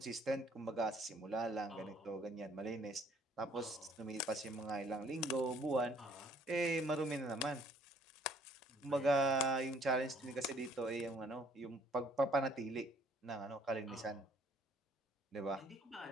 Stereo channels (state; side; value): normal; both; correlation 0.61